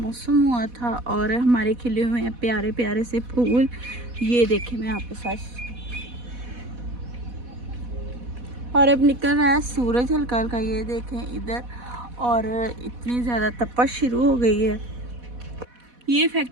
हुआ था और हमारे खिले हुए हैं प्यारे प्यारे से फूल। ये देखें मैं आपके साथ, और अब निकल रहा है सूरज हल्का हल्का, ये देखें इधर, और इतनी ज़्यादा तपश शुरू हो गई है। ये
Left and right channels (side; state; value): left; late; 4.1 ms